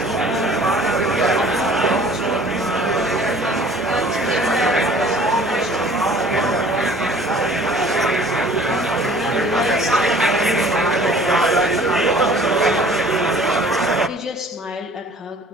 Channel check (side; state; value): both; normal; correlation 0.50